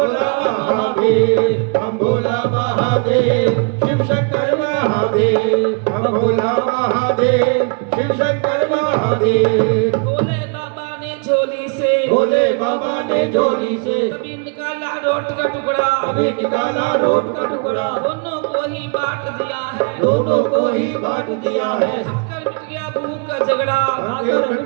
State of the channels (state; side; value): quieter; left; 37.6 dB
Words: महादेव हम भोला महादेव शिव शंकर महादेव हम भोला महादेव शिव शंकर महादेव भोले बाबा ने झोली से भोले बाबा ने झोली से कभी निकाला रोट का टुकड़ा अभी निकाला रोट का टुकड़ा दोनों को ही बांट दिया है दोनों को ही बांट दिया है खाकर मिट गया भूख का झगड़ा खाकर मिट